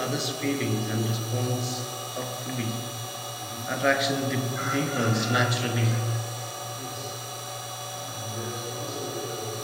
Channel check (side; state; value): both; identical; correlation 1.00